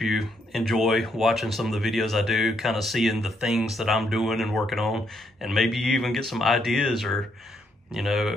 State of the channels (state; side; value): normal; both; correlation 0.75